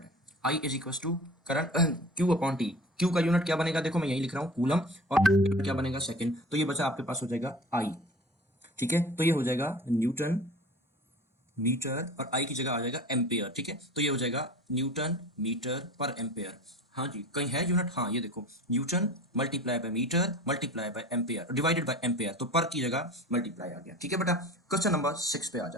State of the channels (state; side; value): normal; both; correlation 0.39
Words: है। I is equals to current Q upon T. Q का यूनिट क्या बनेगा, देखो मैं यही लिख रहा हूँ कूलम, और क्या बनेगा सेकंड, तो ये बचा आपके पास हो जाएगा आई। ठीक है, तो ये हो जाएगा न्यूटन मीटर, और आई की जगह आ जाएगा एम्पेयर। ठीक है, तो ये हो जाएगा न्यूटन मीटर पर एम्पेयर। हाँ जी, कहीं है यूनिट, हाँ ये देखो, newton multiply by metre multiply by ampere divided by ampere, तो पर की जगह मल्टीप्लाई आ गया। ठीक है बेटा, क्वेश्चन नंबर 6 पे आ